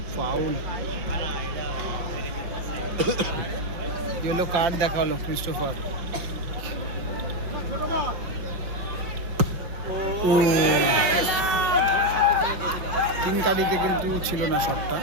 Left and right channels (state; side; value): late; left; 6.0 ms